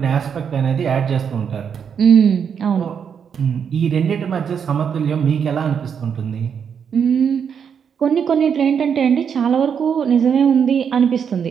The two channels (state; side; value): quieter; left; 7.3 dB